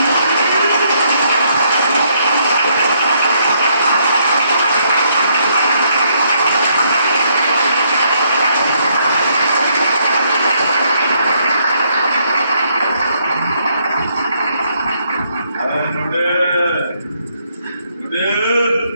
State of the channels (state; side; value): inverted; both; correlation -0.72